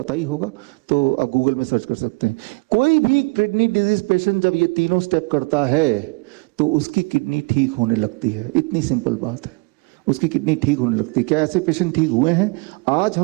ही होगा, तो आप गूगल में सर्च कर सकते हैं। कोई भी किडनी डिजीज पेशेंट जब ये तीनों स्टेप करता है तो उसकी किडनी ठीक होने लगती है। इतनी सिंपल बात है, उसकी किडनी ठीक होने लगती है। क्या ऐसे पेशेंट ठीक हुए हैं? आज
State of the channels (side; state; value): left; quieter; 29.9 dB